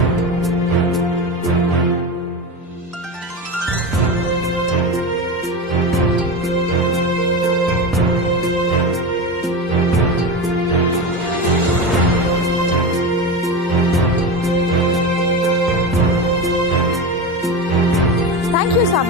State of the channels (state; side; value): normal; both; correlation 0.22